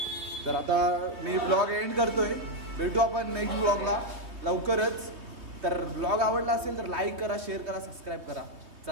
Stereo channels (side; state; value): left; late; 3.1 ms